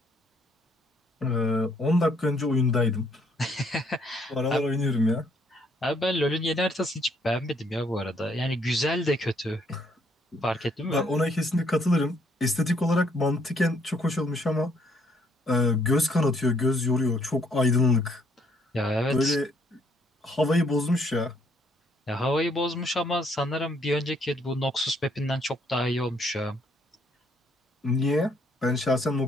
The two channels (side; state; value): both; normal; correlation 0.68